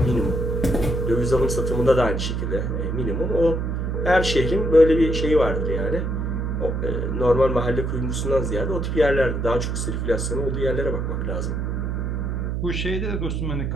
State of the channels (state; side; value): noise; right; hum, 1 dB below the sound